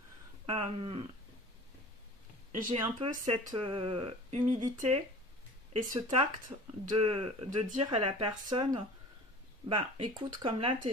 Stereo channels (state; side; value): normal; both; correlation 0.42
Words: j'ai un peu cette humilité et ce tact de dire à la personne, bah écoute, comme là